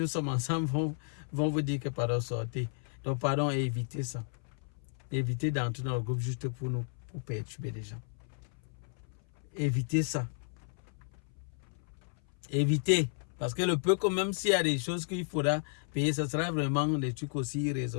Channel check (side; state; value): right; silent; 56 dB below the other